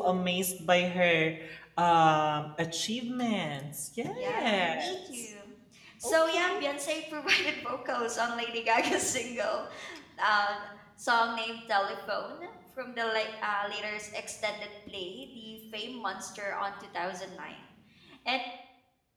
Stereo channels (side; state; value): both; identical; correlation 1.00